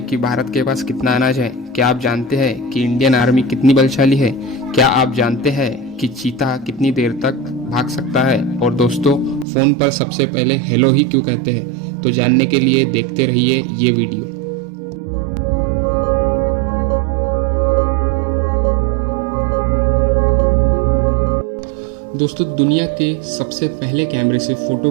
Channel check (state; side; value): drops out; left; at 9.5 s